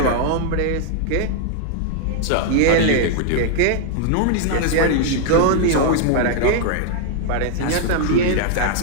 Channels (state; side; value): different; both; correlation 0.00